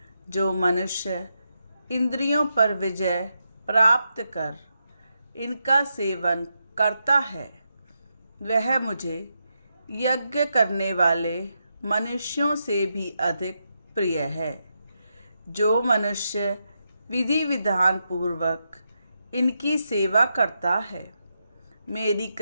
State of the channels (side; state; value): both; inverted; correlation -0.84